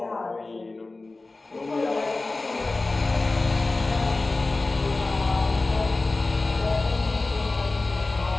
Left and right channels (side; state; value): right; quieter; 3.3 dB